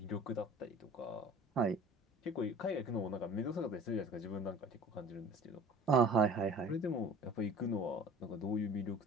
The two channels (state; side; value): normal; both; correlation 0.45